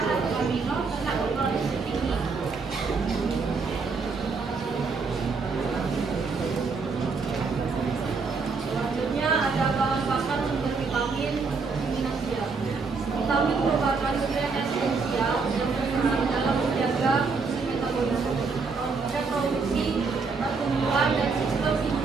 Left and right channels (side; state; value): left; quieter; 4.6 dB